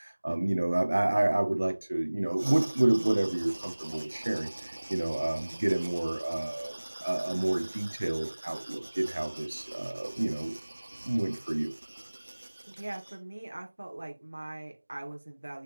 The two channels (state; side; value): inverted; both; correlation -1.00